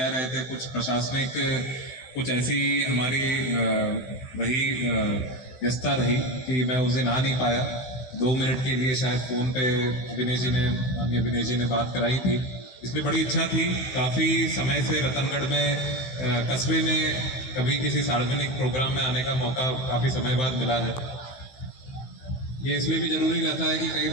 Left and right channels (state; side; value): late; right; 16 ms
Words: रहे थे, कुछ प्रशासनिक कुछ ऐसी हमारी वही व्यस्तता रही कि मैं उस दिन आ नहीं पाया। 2 मिनट के लिए शायद फ़ोन पे माननीय विनेश जी ने बात कराई थी, इसलिए बड़ी इच्छा थी। काफ़ी समय से रतनगढ़ में कस्बे में कभी किसी सार्वजनिक प्रोग्राम में आने का मौका काफ़ी समय बाद मिला है। ये इसलिए भी ज़रूरी रहता है कि कई